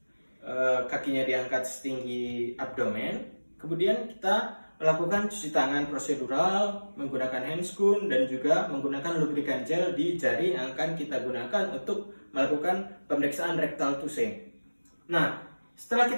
kakinya diangkat setinggi abdomen, kemudian kita melakukan cuci tangan prosedural menggunakan handscoon dan juga menggunakan lubrikan gel di jari yang akan kita gunakan untuk melakukan pemeriksaan rectal touche. Nah, setelah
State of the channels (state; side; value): inverted; both; correlation -1.00